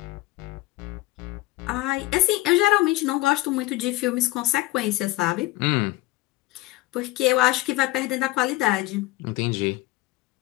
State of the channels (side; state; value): right; quieter; 18.7 dB